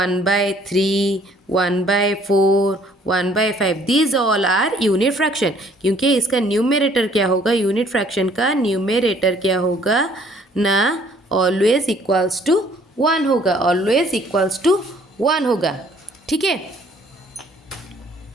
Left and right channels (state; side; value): normal; both; correlation 0.60